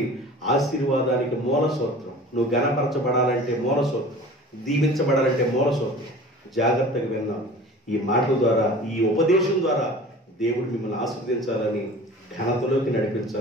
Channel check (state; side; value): normal; both; correlation 0.41